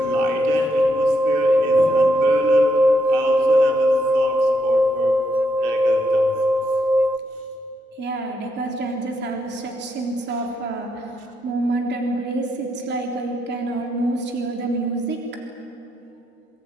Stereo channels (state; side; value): normal; both; correlation 0.78